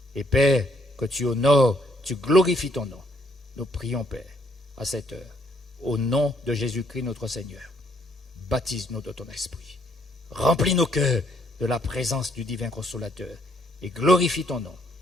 Et Père, que tu honores, tu glorifies ton nom. Nous prions, Père, à cette heure, au nom de Jésus-Christ notre Seigneur. baptise-nous de ton esprit. Remplis nos cœurs de la présence du divin consolateur et glorifie ton nom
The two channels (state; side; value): normal; both; correlation 0.70